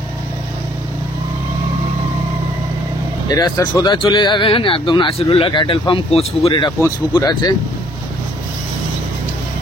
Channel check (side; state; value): both; normal; correlation 0.62